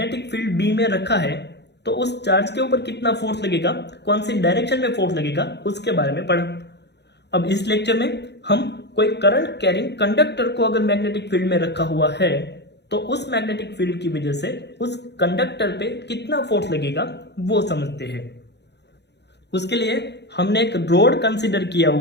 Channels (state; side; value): late; right; 0.50 ms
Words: फील्ड B में रखा है तो उस चार्ज के ऊपर कितना फोर्स लगेगा, कौन सी डायरेक्शन में फोर्स लगेगा, उसके बारे में पढ़ा। अब इस लेक्चर में हम कोई करंट कैरिंग कंडक्टर को अगर मैग्नेटिक फील्ड में रखा हुआ है तो उस मैग्नेटिक फील्ड की वजह से उस कंडक्टर पे कितना फोर्स लगेगा वो समझते हैं। उसके लिए हमने एक रोड कंसीडर किया